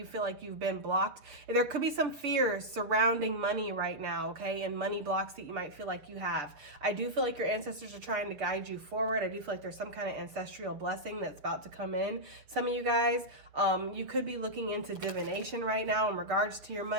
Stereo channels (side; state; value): left; late; 7.2 ms